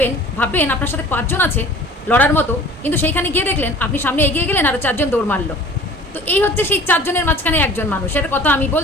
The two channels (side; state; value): both; normal; correlation 0.46